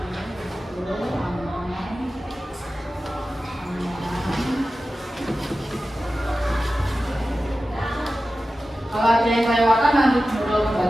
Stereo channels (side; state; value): both; normal; correlation 0.94